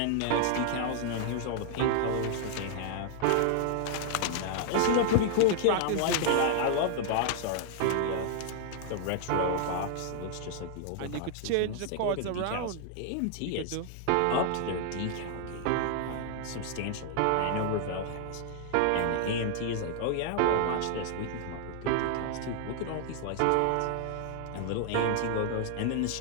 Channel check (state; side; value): different; both; correlation 0.00